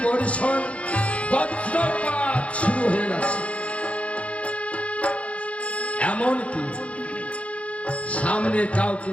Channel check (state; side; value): late; right; 0.063 ms